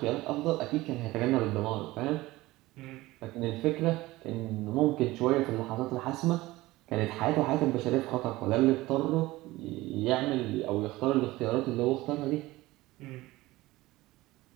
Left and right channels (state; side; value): quieter; left; 18.7 dB